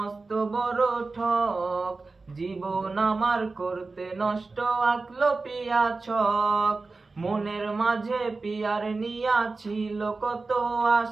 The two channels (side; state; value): left; quieter; 3.8 dB